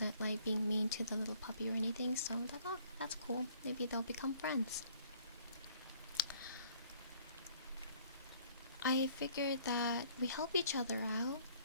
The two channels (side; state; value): both; inverted; correlation -0.59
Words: like being mean to the little puppy or anything, so I was like, oh, that's cool. Maybe they'll become friends. I figured that we help each other out